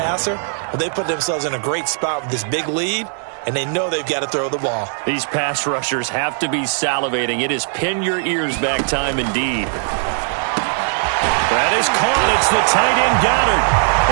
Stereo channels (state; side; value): silent; left; 66 dB below the other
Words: Well, they put themselves in a great spot with this big lead, and they know they've got to throw the ball. These pass rushers have to be salivating. It is pin your ears back time indeed. That is caught. It's the tight end Goddard.